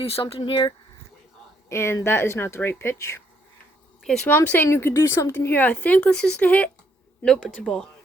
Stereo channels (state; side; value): normal; both; correlation 0.71